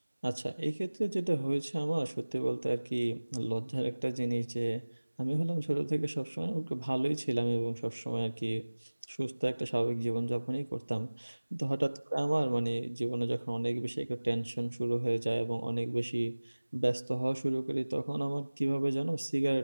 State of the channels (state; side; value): inverted; both; correlation -1.00